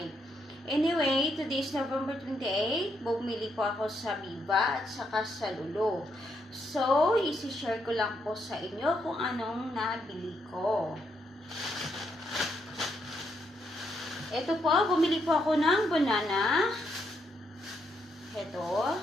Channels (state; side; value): normal; both; correlation 0.77